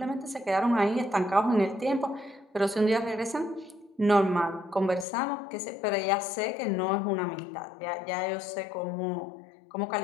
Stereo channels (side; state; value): right; drops out; at 5.1 s